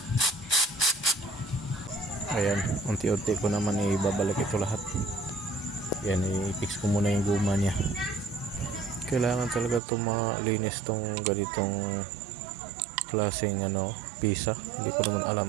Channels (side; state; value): left; drops out; at 9.8 s